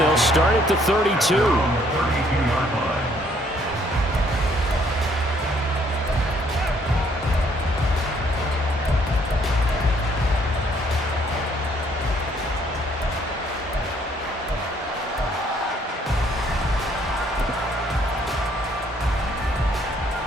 start at the 32.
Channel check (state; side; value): normal; both; correlation 0.65